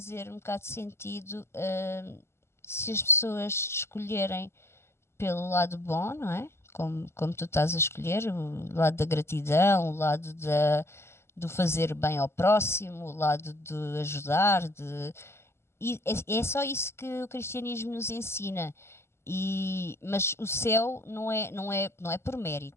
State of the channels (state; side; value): late; right; 0.12 ms